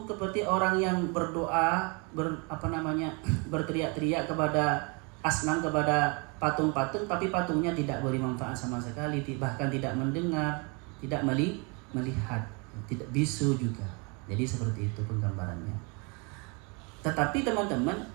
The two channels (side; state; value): left; quieter; 31.9 dB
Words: seperti orang yang berdoa, berteriak-teriak kepada asnam, kepada patung-patung, tapi patungnya tidak beri manfaat sama sekali, bahkan tidak mendengar, tidak melihat, tidak bisu juga. Jadi seperti itu penggambarannya. Tetapi teman-teman,